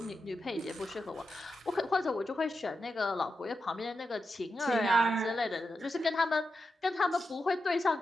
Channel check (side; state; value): both; normal; correlation 0.89